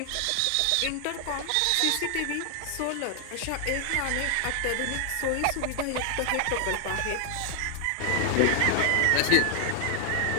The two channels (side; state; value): both; different; correlation 0.00